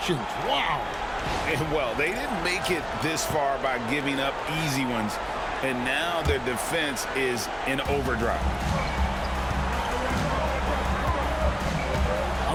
Wow. And well, they didn't make it this far by giving up easy ones, and now their defense is in overdrive.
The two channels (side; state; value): both; identical; correlation 1.00